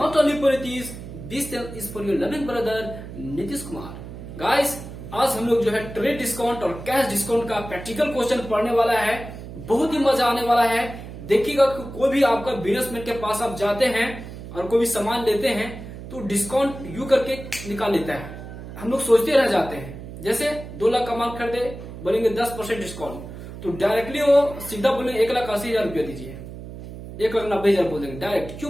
only for this channel is for your loving brother Nitish Kumar. Guys, आज हम लोग जो है trade discount और cash discount का practical question पढ़ने वाला है. बहुत ही मजा आने वाला है. देखिएगा कोई भी आपका बिजनेसमैन के पास आप जाते हैं और कोई भी सामान लेते हैं तो डिस्काउंट यू करके निकाल लेता है. हम लोग सोचते रह जाते हैं, जैसे 2 लाख का माल खरीदे बोलेंगे 10% डिस्काउंट, तो डायरेक्टली वो सीधा बोलेंगे 1,80,000 रुपया दीजिए, 1,90,000 बोल देंगे. डायरेक्ट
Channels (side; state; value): right; noise; hum, 12 dB below the sound